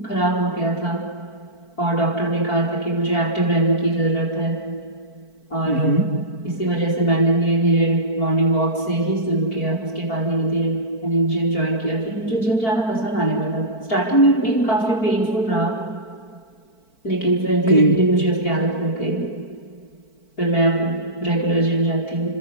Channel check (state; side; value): late; right; 4.5 ms